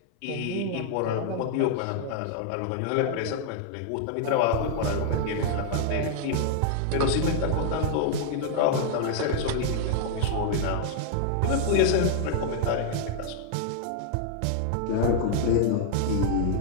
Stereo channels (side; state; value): both; different; correlation 0.00